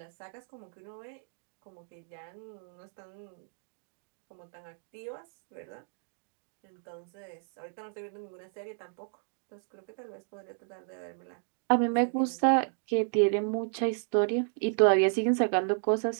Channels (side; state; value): left; silent; 56 dB below the other